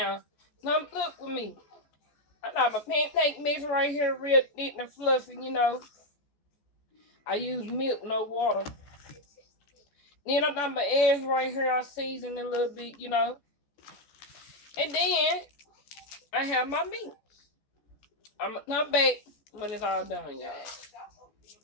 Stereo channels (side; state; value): right; late; 14 ms